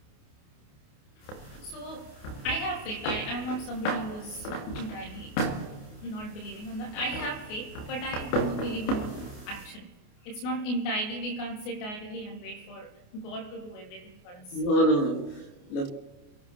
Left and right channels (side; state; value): right; late; 28 ms